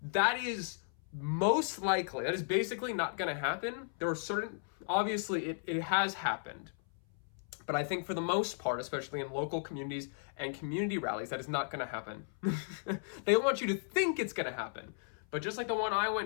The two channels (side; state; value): right; silent; 54 dB below the other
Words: that is most likely, that is basically not gonna happen. There are certain, obviously it has happened. But I think for the most part, especially in local communities and community rallies, that is not going to happen. They want you to think it's going to happen. But just like the one I